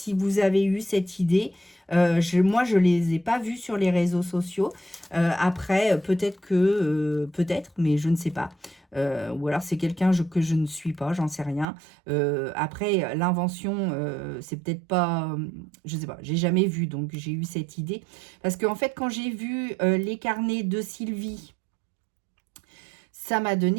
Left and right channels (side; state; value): left; drops out; at 11.7 s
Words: vous avez eu cette idée. Moi, je ne les ai pas vus sur les réseaux sociaux. Après, peut-être que... peut-être, mais je ne sais pas. Ou alors, c'est quelqu'un que je ne suis pas, j'en sais rien. Après, l'invention, c'est peut-être pas... je ne sais pas, j'ai jamais vu, donc j'ai eu cette idée. Parce qu'en fait, quand j'ai vu les carnets de Sylvie... ça m'a